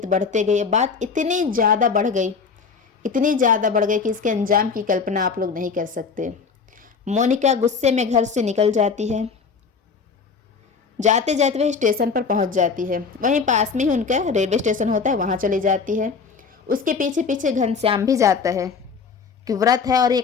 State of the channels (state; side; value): quieter; right; 5.4 dB